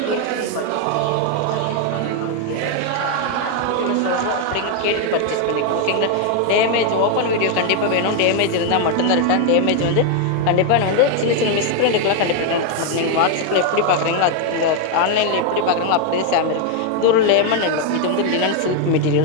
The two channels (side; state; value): both; different; correlation 0.01